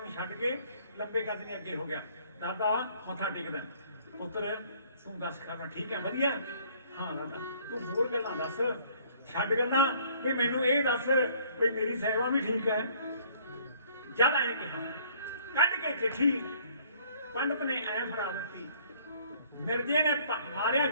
ਨੂੰ ਛੱਡ ਕੇ ਲੰਬੇ ਕੱਦ ਦੇ ਅੱਗੇ ਹੋ ਗਿਆ। ਦਾਦਾ ਮੱਥਾ ਟੇਕਦਾ, ਪੁੱਤਰ ਤੂੰ ਦੱਸ ਖਾਣਾ ਠੀਕ ਹੈ ਵਧੀਆ? ਹਾਂ ਦਾਦਾ ਤੂੰ ਹੋਰ ਗੱਲਾਂ ਦੱਸ, ਛੱਡ ਗੱਲਾਂ ਵੀ ਮੈਨੂੰ ਇਹ ਦੱਸ ਵੀ ਮੇਰੀ ਸੇਵਾ ਵੀ ਠੀਕ ਹੈ। ਜਦ ਆਏ ਕਿਹਾ, ਕੱਢ ਕੇ ਚਿੱਠੀ ਪੰਡਤ ਨੇ ਐ ਫੜਾ ਦਿੱਤੀ। ਮਿਰਜ਼ੇ ਨੇ ਮਾਰਿਆ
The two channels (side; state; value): both; inverted; correlation -0.58